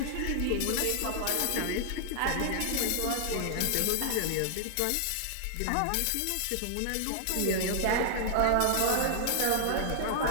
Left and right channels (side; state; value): both; different; correlation -0.01